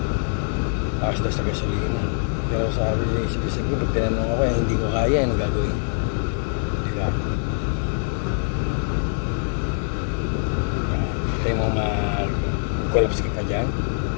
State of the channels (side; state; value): right; silent; 63 dB below the other